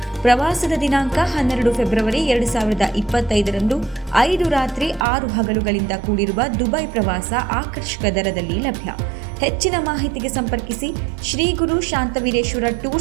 ಪ್ರವಾಸದ ದಿನಾಂಕ 12 ಫೆಬ್ರವರಿ 2025ರಂದು 5 ರಾತ್ರಿ 6 ಹಗಲುಗಳಿಂದ ಕೂಡಿರುವ ದುಬೈ ಪ್ರವಾಸ ಆಕರ್ಷಕ ದರದಲ್ಲಿ ಲಭ್ಯ. ಹೆಚ್ಚಿನ ಮಾಹಿತಿಗೆ ಸಂಪರ್ಕಿಸಿ ಶ್ರೀ ಗುರು ಶಾಂತವೀರೇಶ್ವರ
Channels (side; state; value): left; drops out; at 5.1 s